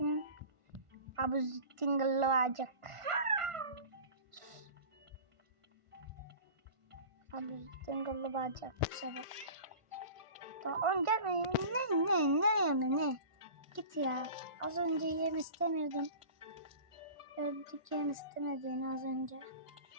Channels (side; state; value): left; late; 1.5 ms